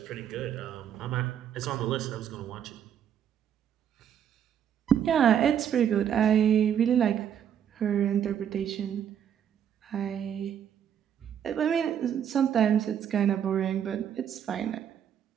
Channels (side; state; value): left; quieter; 9.1 dB